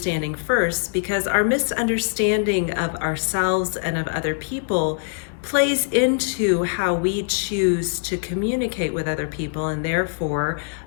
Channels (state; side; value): silent; right; digital silence